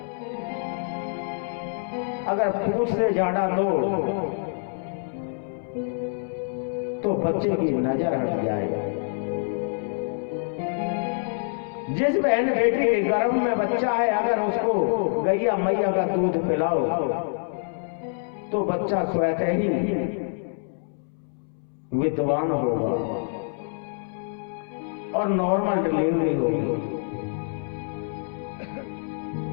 अगर पूछ से झाड़ा दो तो बच्चे की नजर हट जाए। जिस बहन बेटी के गर्भ में बच्चा है, अगर उसको गैया मैया का दूध पिलाओ तो बच्चा स्वतः ही विद्वान होगा और नॉर्मल डिलीवरी होगी।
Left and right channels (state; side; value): silent; right; 61 dB below the other